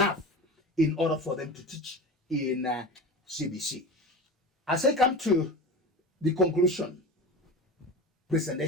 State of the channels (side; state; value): both; normal; correlation 0.31